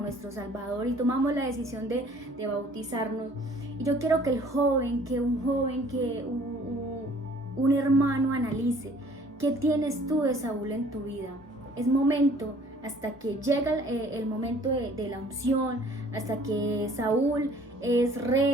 Salvador y tomamos la decisión de bautizarnos. Y yo quiero que un hermano analice: ¿qué tienes tú de Saúl en tu vida? Es momento, hasta que llega el momento de la unción, hasta que Saúl es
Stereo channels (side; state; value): both; normal; correlation 0.55